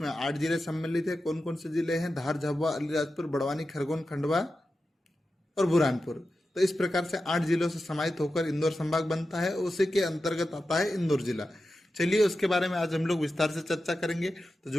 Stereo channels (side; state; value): both; normal; correlation 0.92